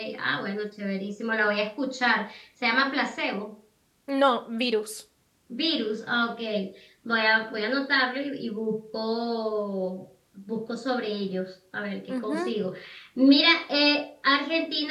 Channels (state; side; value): identical; both; correlation 1.00